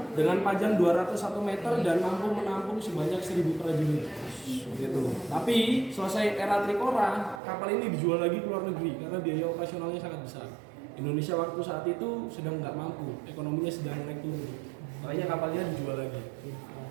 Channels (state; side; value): drops out; left; at 7.4 s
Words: dengan panjang 201 meter dan mampu menampung sebanyak 1000 prajurit. Gitu. Tapi selesai era Trikora, kapal ini dijual lagi ke luar negeri karena biaya operasionalnya sangat besar. Indonesia waktu saat itu sedang nggak mampu, ekonominya sedang naik turun. Makanya kapalnya dijual lagi.